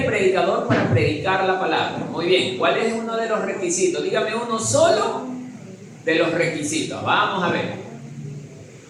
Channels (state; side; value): identical; both; correlation 1.00